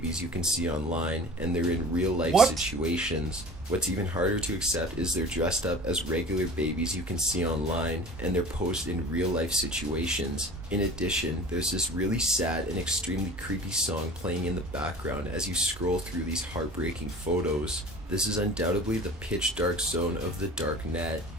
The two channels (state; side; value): normal; both; correlation 0.40